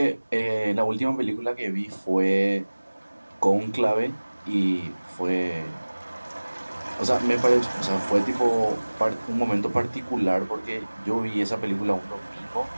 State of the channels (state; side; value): inverted; both; correlation -1.00